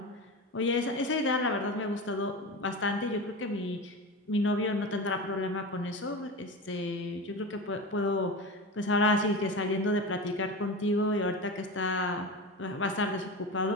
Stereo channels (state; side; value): normal; both; correlation 0.26